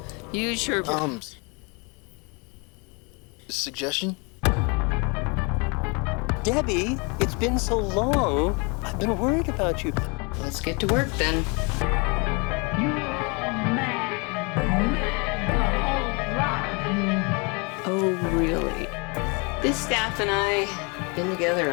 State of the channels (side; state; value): right; quieter; 31.4 dB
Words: use your... Suggestion? Debbie, it's been so long. I've been worried about you. Let's get to work then. Oh, really? This staff and I have been together